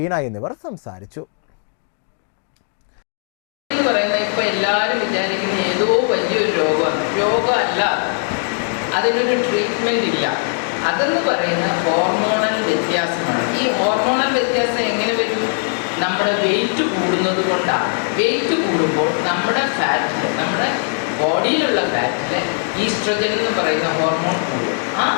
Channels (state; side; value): silent; right; 60 dB below the other